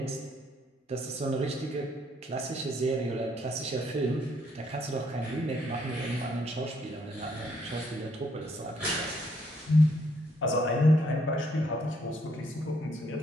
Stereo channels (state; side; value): normal; both; correlation 0.69